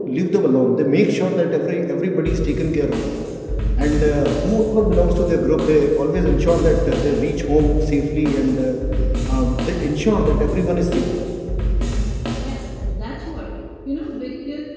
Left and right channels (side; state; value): both; identical; correlation 1.00